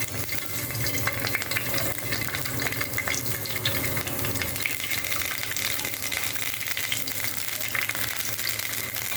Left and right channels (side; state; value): both; identical; correlation 1.00